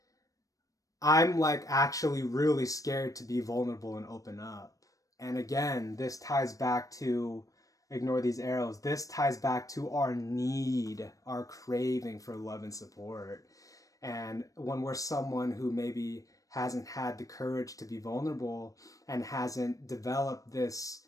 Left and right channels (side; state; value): right; late; 0.16 ms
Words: I'm like actually really scared to be vulnerable and open up. And again, this ties back to, ignore these arrows, this ties back to our need, our craving for love and support. And when we're someone who maybe hasn't had the courage to be vulnerable and hasn't developed this